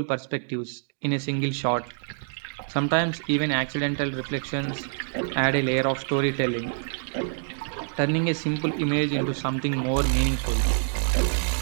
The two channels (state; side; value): silent; left; digital silence